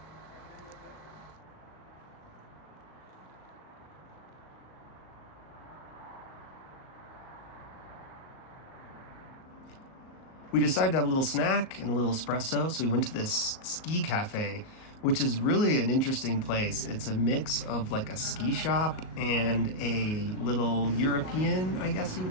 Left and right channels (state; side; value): late; right; 38 ms